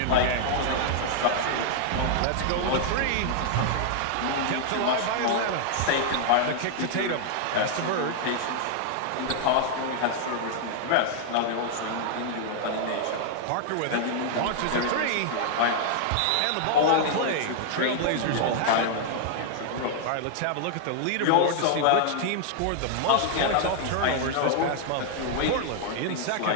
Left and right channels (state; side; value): different; both; correlation -0.01